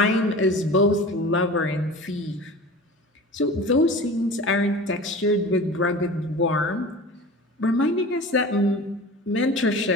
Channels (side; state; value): both; normal; correlation 0.37